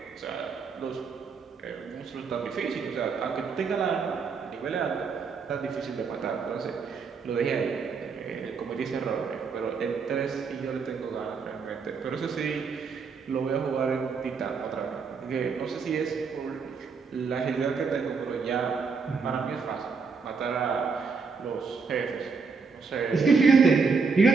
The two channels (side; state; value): left; quieter; 5.1 dB